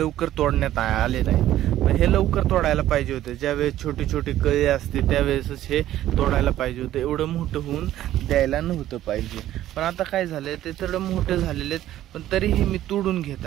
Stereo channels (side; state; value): left; quieter; 13.2 dB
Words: तोडण्यात आले नाही। हे लवकर तोडायला पाहिजे होते, ज्यावेळेस छोटी छोटी कळी असते त्यावेळेसच हे तोडायला पाहिजे होते, एवढं मोठं होऊन द्यायला नव्हतं पाहिजे। पण आता काय झालंय, ते थोडं मोठे झालेले आहेत, पण तरीही मी तोडून घेत